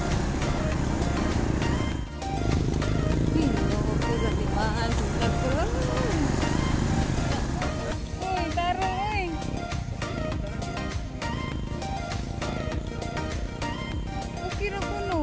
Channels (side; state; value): both; identical; correlation 1.00